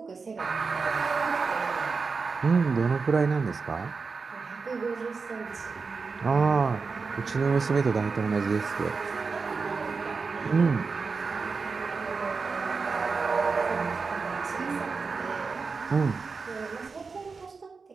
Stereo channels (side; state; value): left; quieter; 4.7 dB